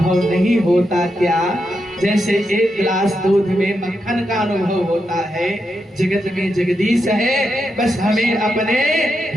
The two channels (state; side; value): normal; both; correlation 0.84